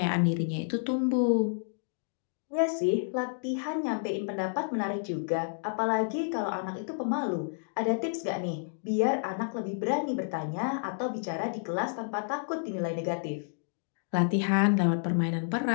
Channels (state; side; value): silent; right; digital silence